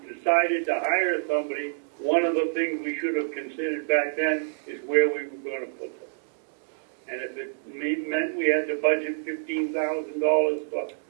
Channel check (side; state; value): left; silent; digital silence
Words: decided to hire somebody, one of the things we should have considered back then is where we were going to put them. And if it meant we had to budget $15,000 for